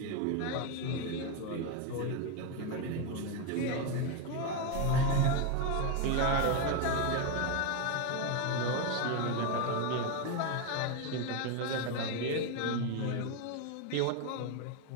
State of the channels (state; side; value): different; both; correlation 0.02